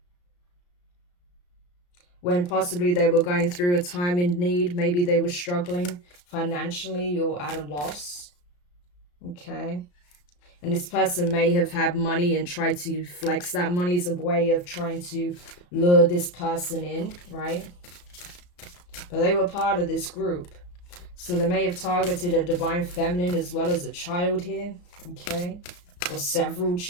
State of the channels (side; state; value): right; late; 34 ms